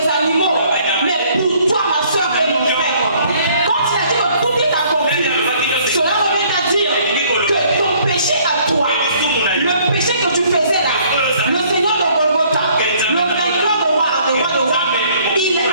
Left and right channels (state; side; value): inverted; both; correlation -0.60